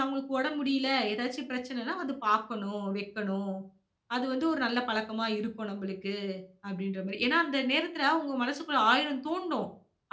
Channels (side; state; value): both; identical; correlation 1.00